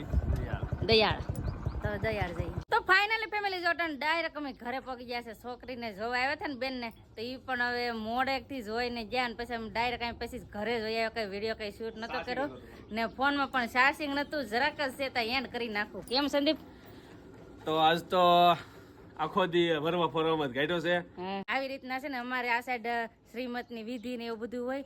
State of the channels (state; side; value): identical; both; correlation 1.00